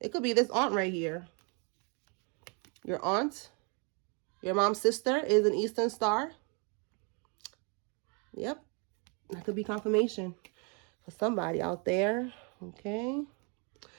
it could be this aunt right here. Your aunt, your mom's sister is an Eastern star. Yep. That could be confirmation for somebody out there. Okay.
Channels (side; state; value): left; quieter; 35.2 dB